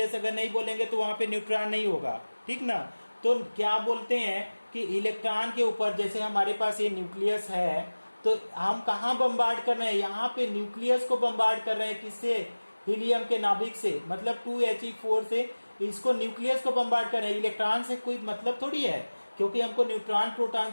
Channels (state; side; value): inverted; both; correlation -1.00